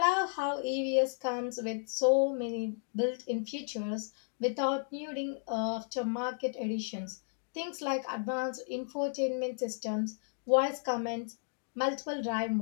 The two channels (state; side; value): silent; right; digital silence